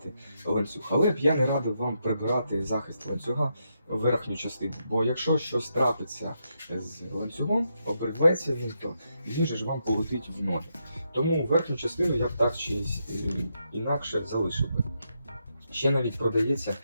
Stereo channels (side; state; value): both; inverted; correlation -0.82